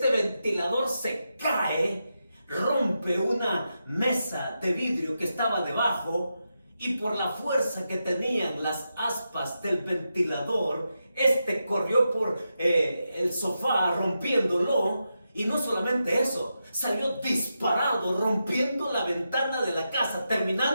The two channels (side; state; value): both; inverted; correlation -0.87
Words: ventilador se cae, rompe una mesa de vidrio que estaba debajo y por la fuerza que tenían las aspas del ventilador, este corrió por el sofá rompiéndolo. Y no solamente eso, salió disparado, rompiendo la ventana de la casa,